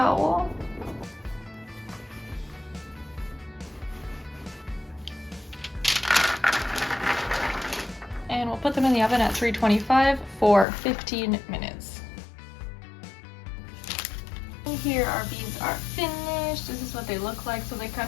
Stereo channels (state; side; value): drops out; right; at 10.7 s